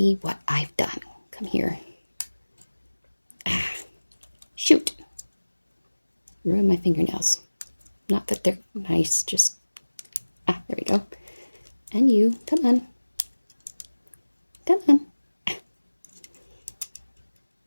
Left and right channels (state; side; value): inverted; both; correlation -1.00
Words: what I've done. Come here. Ah, shoot. Ruin my fingernails. Not that they're nice, just... Ah, there we go. And you, come on. Come on.